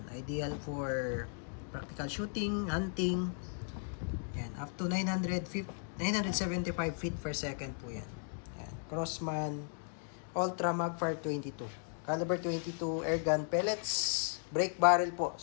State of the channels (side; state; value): right; silent; 54 dB below the other